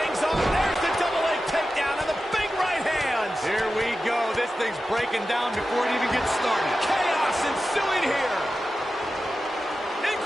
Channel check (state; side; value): normal; both; correlation 0.93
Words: off. There's the double leg takedown and the big right hands. Here we go. This thing's breaking down before it even gets started. Chaos ensuing here.